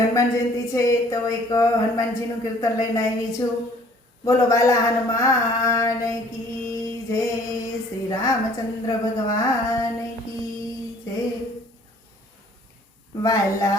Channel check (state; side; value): normal; both; correlation 0.56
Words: જયંતિ છે તો એક હનુમાનજીનું કીર્તન લઈને આવી છું। બોલો બાલા હનુમાન કી જય, શ્રી રામચંદ્ર ભગવાન કી જય।